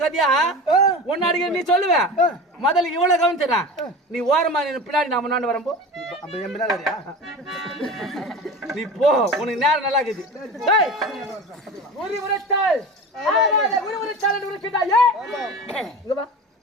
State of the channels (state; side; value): normal; both; correlation 0.32